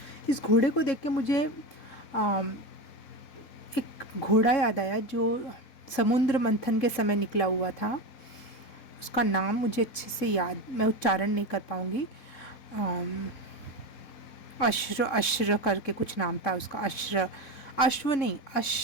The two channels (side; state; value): right; late; 4.1 ms